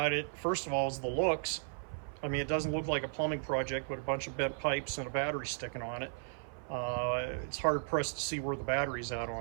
it, first of all, is the looks. I mean, it doesn't look like a plumbing project with a bunch of bent pipes and a battery sticking on it. It's hard pressed to see where the battery's at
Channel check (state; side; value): silent; left; 54 dB below the other